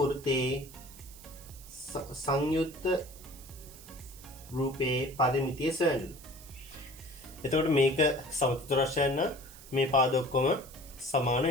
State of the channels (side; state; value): right; noise; hiss, 19 dB below the sound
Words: සංයුක්ත රූපයේ පරිමිතිය සොයන්න. එතකොට මේක සමචතුරස්‍රයන් නම් මේ පාද ඔක්කොම සමාන